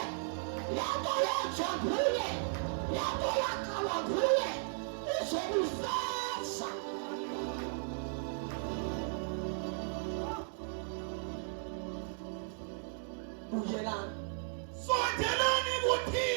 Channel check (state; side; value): silent; left; digital silence